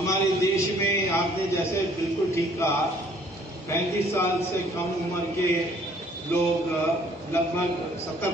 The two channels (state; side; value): normal; both; correlation 0.59